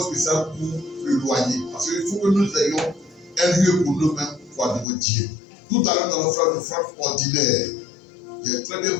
spécial pour le loyer. Parce qu'il faut que nous ayons un lieu pour nous-mêmes pour adorer Dieu. Tout à l'heure, dans l'offrande ordinaire, j'ai très bien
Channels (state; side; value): drops out; right; at 4.9 s